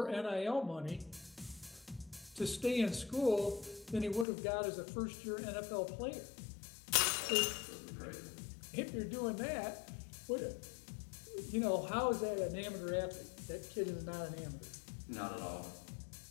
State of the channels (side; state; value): right; drops out; at 4.2 s